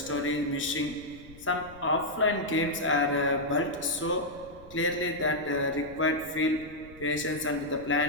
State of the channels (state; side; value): noise; left; rumble, 21 dB below the sound